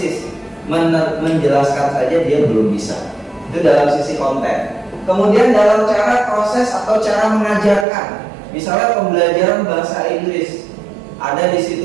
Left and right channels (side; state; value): left; drops out; at 7.9 s